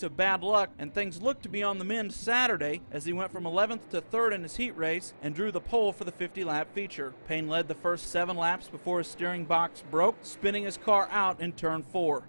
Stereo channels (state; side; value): inverted; both; correlation -1.00